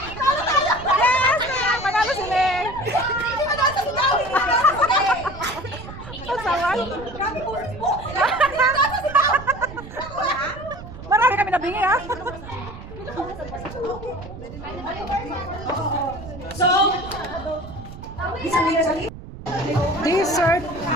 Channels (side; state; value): right; noise; rumble, 13 dB below the sound